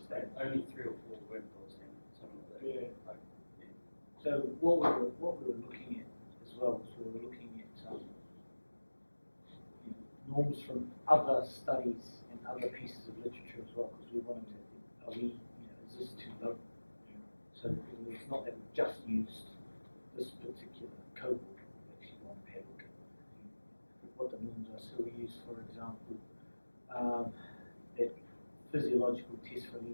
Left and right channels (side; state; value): both; inverted; correlation -1.00